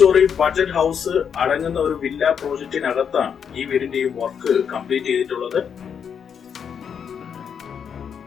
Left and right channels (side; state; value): right; quieter; 7.4 dB